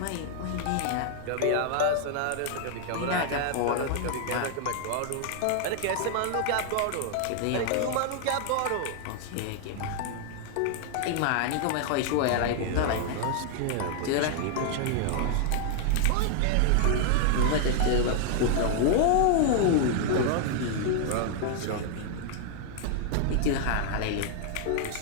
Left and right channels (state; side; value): different; both; correlation 0.00